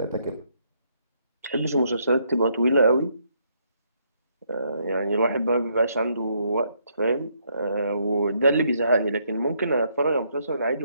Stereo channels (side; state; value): both; inverted; correlation -0.73